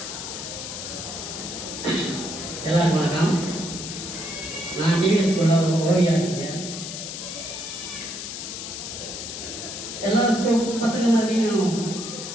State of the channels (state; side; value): noise; left; hiss, 7 dB below the sound